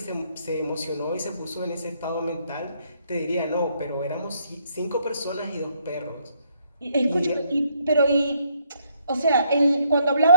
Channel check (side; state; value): both; inverted; correlation -0.70